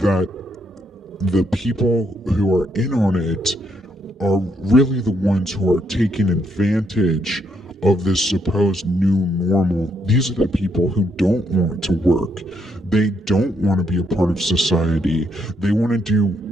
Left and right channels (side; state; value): both; normal; correlation 0.75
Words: the people who are in on it are really the ones who are taking advantage of this supposed new normal. These are the people who don't want to work. They don't want to be a part of society. They want to do